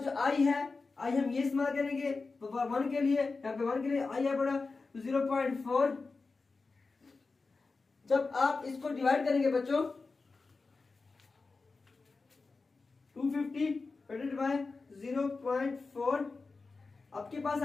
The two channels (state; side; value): quieter; right; 4.0 dB